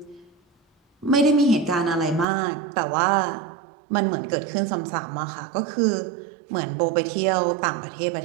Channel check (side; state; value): left; drops out; at 2.2 s